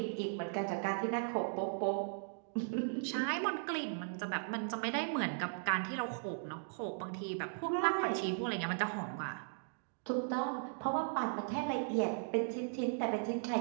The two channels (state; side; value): silent; left; digital silence